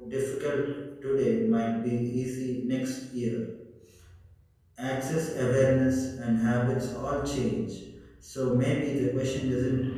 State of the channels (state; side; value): identical; both; correlation 1.00